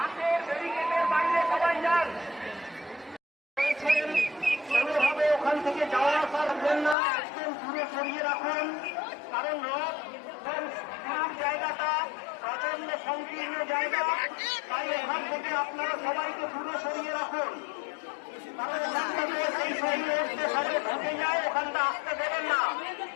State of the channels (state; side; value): drops out; right; at 7.0 s